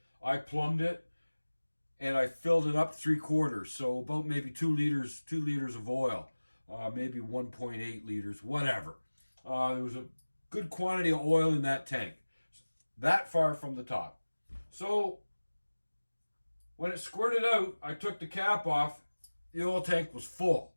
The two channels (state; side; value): inverted; both; correlation -1.00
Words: I plumbed it. And I filled it up 3/4, so about maybe 2 liters of oil, maybe 1.8 liters, whatever. There was a good quantity of oil in that tank, that far from the top. So when it squirted out, I took the cap off. The oil tank was full,